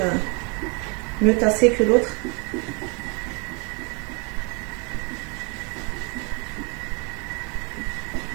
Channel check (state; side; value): quieter; left; 32.7 dB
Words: tassé que l'autre.